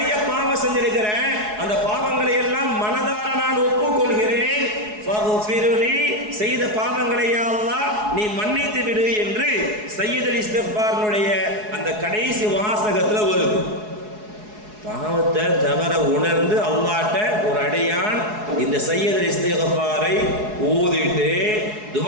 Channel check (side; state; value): left; late; 4.7 ms